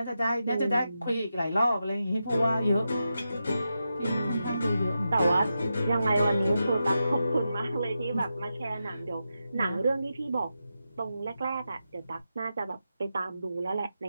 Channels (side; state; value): both; inverted; correlation -0.88